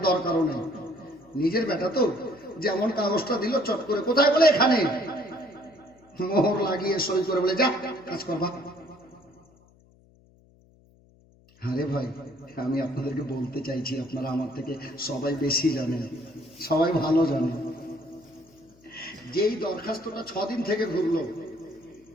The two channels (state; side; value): noise; left; hum, 29 dB below the sound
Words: দরকারও নেই। নিজের বেটা তো, যেমন কাগজটা দিল চট করে, কোথায়? বলে এখানে। মোহর লাগিয়ে সই করে বলে যা কাজ করবা। আরে ভাই, আমি আপনাদেরকে বলতে চাইছি, আপনারা আমার থেকে সবাই বেশি জানেন, সবাই ভালো জানেন। যেই দরখাস্তটা 6 দিন থেকে ঘুরলো,